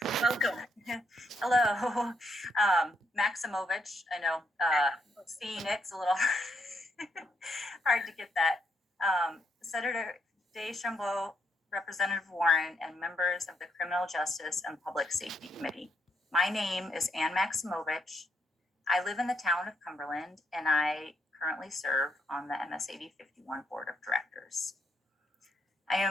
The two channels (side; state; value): both; normal; correlation 0.76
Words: Welcome. Hello, Maximovich. I know Phoenix a little hard to get that. Senator Deschambault, Representative Warren, and members of the Criminal Justice and Public Safety Committee. My name is Ann Maximovich. I live in the town of Cumberland, and I currently serve on the MS80 51 Board of Directors. I